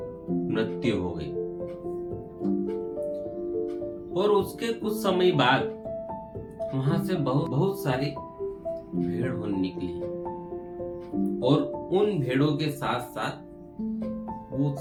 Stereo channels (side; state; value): both; identical; correlation 1.00